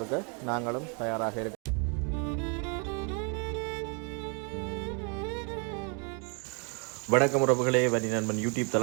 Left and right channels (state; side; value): quieter; left; 37.2 dB